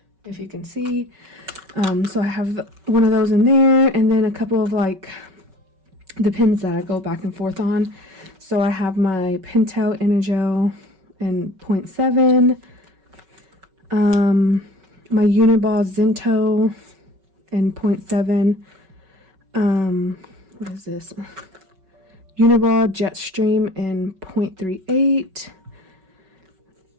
if you can see. So I have one of those in there, and then a couple of like the pins that I go back and forth on. So I have my Pintail Energel in 0.7, my Uniball Zinto in 0.7, what is this? Uniball Jetstream in 0.38,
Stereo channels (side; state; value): left; late; 5.3 ms